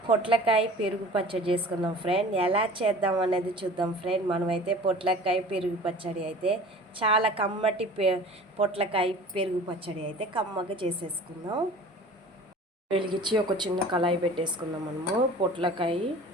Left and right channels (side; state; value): both; normal; correlation 0.42